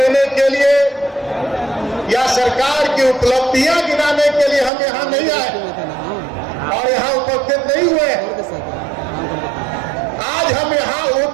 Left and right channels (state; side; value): drops out; left; at 4.7 s